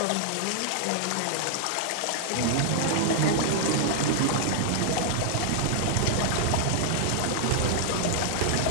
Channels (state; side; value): different; both; correlation -0.01